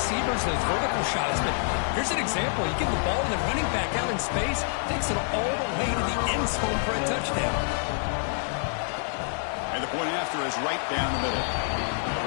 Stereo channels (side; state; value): right; silent; 60 dB below the other